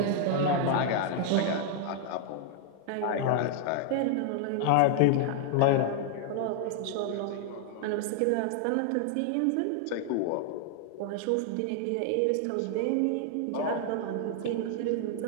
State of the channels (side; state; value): both; different; correlation 0.00